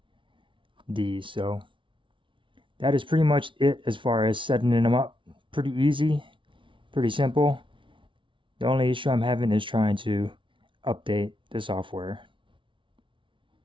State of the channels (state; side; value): late; left; 0.25 ms